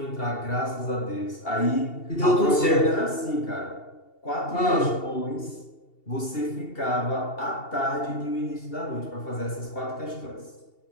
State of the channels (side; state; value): right; late; 2.7 ms